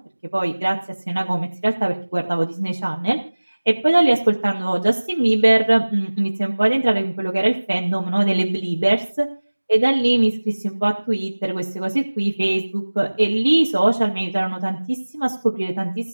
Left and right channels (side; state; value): both; inverted; correlation -1.00